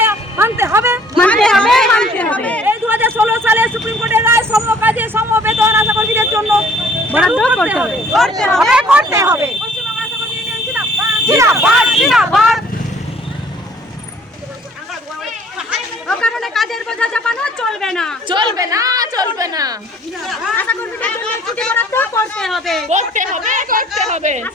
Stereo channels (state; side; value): normal; both; correlation 0.56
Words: মানতে হবে, মানতে হবে, মানতে হবে, এই 2016 সালে সুপ্রিম কোর্টের রায় সমকাজে সমবেতন আশা কর্মীদের জন্য বরাদ্দ করতে হবে, করতে হবে, করতে হবে। পশ্চিমবঙ্গ আশা কর্মী ইউনিয়ন জিন্দাবাদ, জিন্দাবাদ, জিন্দাবাদ। অকারণে কাজের বোঝা চাপানো চলবে না, চলবে না, চলবে না, আশা কর্মীদের জন্য ছুটি বরাদ্দ করতে হবে, করতে হবে, করতে হবে,